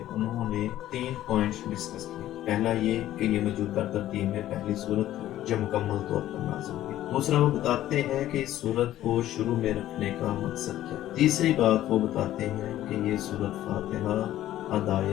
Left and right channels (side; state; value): right; quieter; 13.5 dB